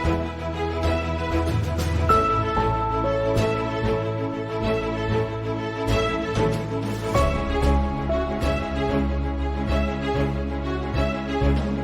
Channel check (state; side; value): identical; both; correlation 1.00